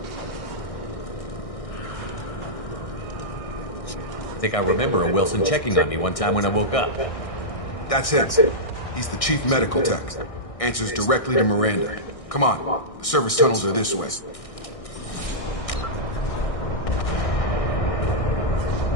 I think I remember a Wilson checking on me one time when I woke up. That's him. He's the chief medical tech. Answers directly to Miranda. Come on. The service tunnels are this way.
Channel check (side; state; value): right; late; 1.6 ms